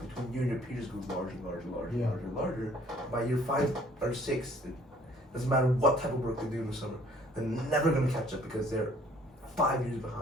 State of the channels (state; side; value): normal; both; correlation 0.58